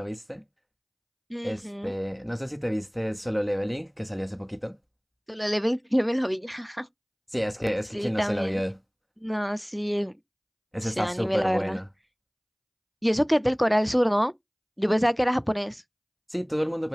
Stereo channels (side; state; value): both; identical; correlation 1.00